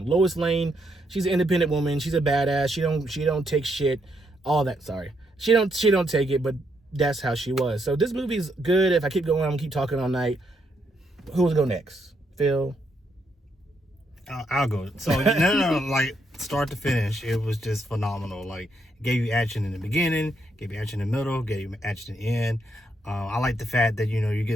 Lois Lane, she's an independent woman. She's a badass. She don't take shit. All that. Sorry, she don't take it, but that's how she was. So this movie's good. If I keep going, I'm gonna keep talking all night. Who's go next? Phil? I'll go. So, no, like, start to finish, it was just phenomenal. Like, gave you action in the beginning, gave you action in the middle, gave you action in the end. I like the fact that, you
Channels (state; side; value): normal; both; correlation 0.77